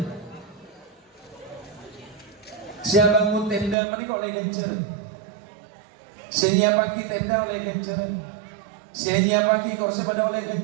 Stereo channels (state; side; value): drops out; left; at 3.8 s